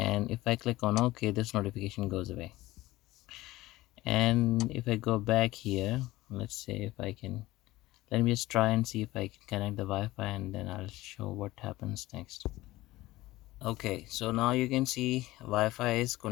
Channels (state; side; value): quieter; right; 18.0 dB